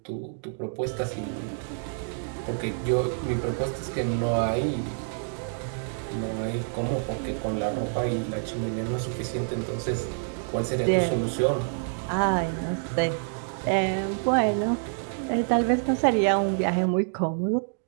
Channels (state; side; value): silent; left; digital silence